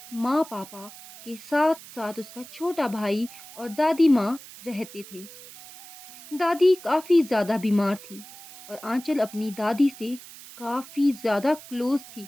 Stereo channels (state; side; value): noise; right; hiss, 17 dB below the sound